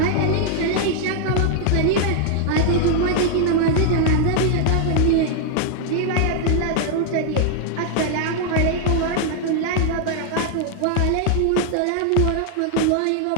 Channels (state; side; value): different; both; correlation 0.00